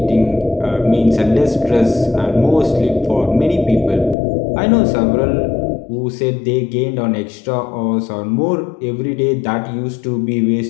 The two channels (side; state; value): right; drops out; at 4.2 s